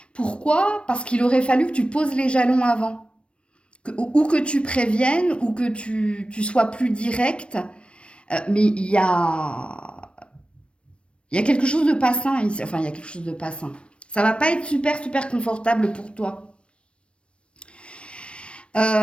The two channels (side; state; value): right; late; 0.059 ms